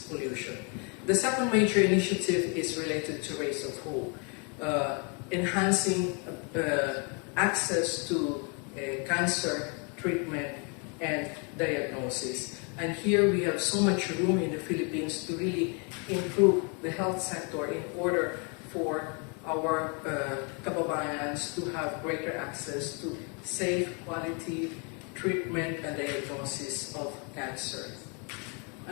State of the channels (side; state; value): right; quieter; 35.4 dB